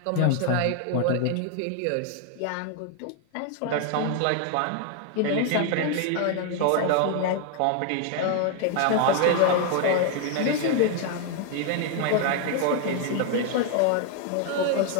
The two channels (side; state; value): both; different; correlation 0.00